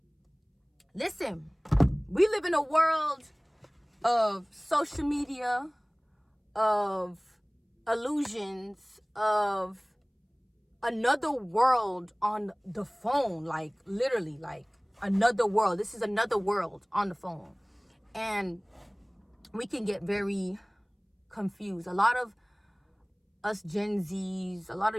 listen, we live in a world of social media, of illusions, of another world on the phone, like literally, like another world. This is another world on the phone. And we can get very confused. A lot of us Gen Zs, a lot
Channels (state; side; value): identical; both; correlation 1.00